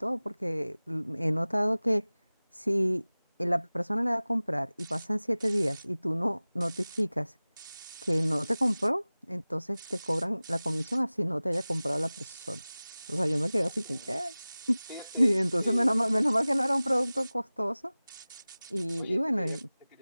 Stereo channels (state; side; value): inverted; both; correlation -0.99